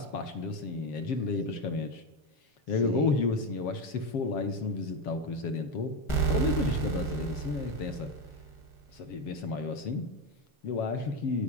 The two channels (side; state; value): right; late; 7.4 ms